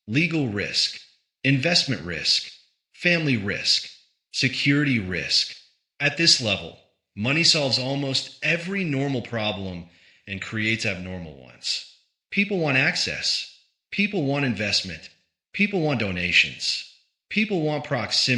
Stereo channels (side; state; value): both; identical; correlation 1.00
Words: legal risk, investment risk, family risk, security risk. At this level, money solves almost every normal problem and creates abnormal ones. People want access. People want investment. People want donations. People want